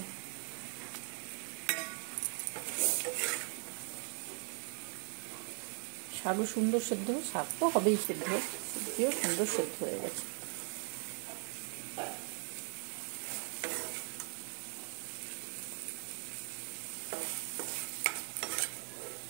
শাকও সুন্দর সেদ্ধ, শাক তো হবেই সেদ্ধ, সবজিও সুন্দর সেদ্ধ হয়ে গেছে।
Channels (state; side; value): quieter; left; 39.8 dB